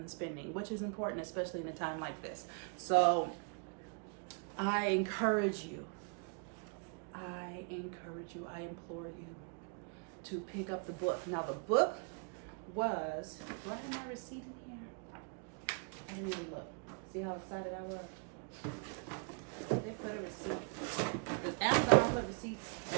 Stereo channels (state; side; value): quieter; left; 39.5 dB